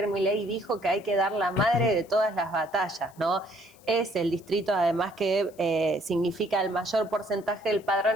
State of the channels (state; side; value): noise; left; hiss, 28 dB below the sound